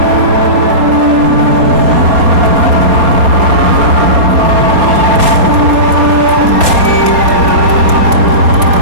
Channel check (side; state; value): left; late; 4.1 ms